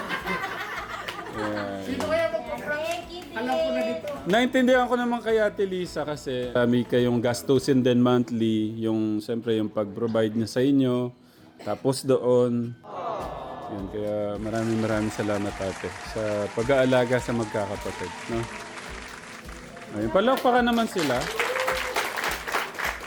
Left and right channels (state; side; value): identical; both; correlation 1.00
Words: Sino kaya magpa-prank? Alam ko na dito. Naintindihan ko naman kay Ate Lisa kasi may kayong gastusin din monthly, yung siyempre yung pag-provide niya sa inyo. Tapos doon, yun, kaya maraming salamat ate sa pag-aalaga sa magkakapatid, no? Ayun, palakpakan naman sila.